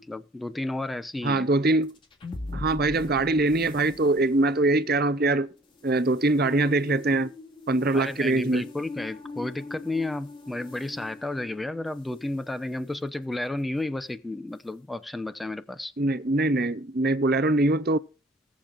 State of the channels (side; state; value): both; normal; correlation 0.56